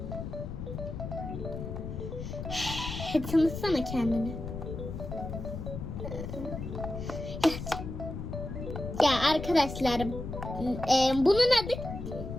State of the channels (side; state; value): left; noise; rumble, 7 dB below the sound